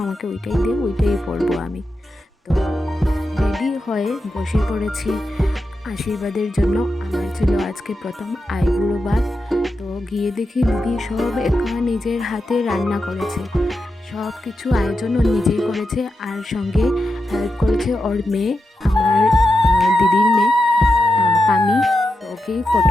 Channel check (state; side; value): normal; both; correlation 0.89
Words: আমাকে ওইটাই দে, ওইটাই পরবো আমি। তো রেডি হয়ে বসে পড়েছি আশীর্বাদের জন্য। আমার ছিল আজকে প্রথম আইবুড়ো ভাত। তো গিয়ে দেখি দিদি সব একা নিজের হাতে রান্না করেছে, সব কিছু আয়োজন ও নিজেই করেছে। আর সঙ্গে হেল্প করেছে ওর মেয়ে, আমার দিদির মেয়ে পামি। তো ওকে